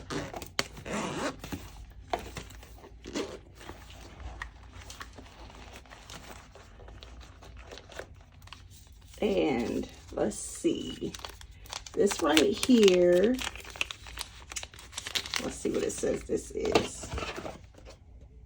And let's see, this right here, let's see what it says this is.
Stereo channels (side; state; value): both; identical; correlation 1.00